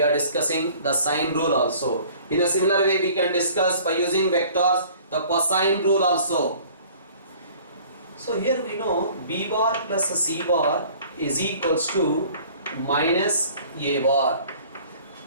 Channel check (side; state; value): both; inverted; correlation -0.51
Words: are discussing the sine rule also. In a similar way we can discuss by using vectors the cosine rule also. So here we know B bar plus C bar is equals to minus A bar.